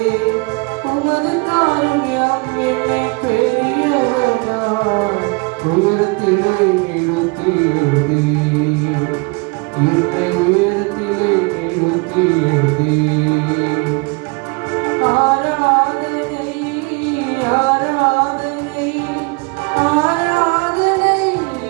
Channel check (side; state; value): left; quieter; 29.6 dB